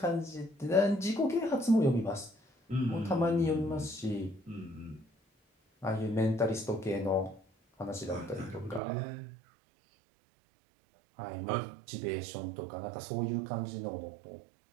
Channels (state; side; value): drops out; left; at 8.8 s